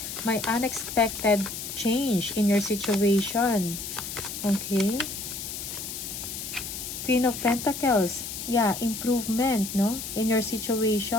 May unexpected change in your situation. Okay? Queen of Pentacles. Yeah, improvement, no? In your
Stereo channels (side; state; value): left; noise; hiss, 7 dB below the sound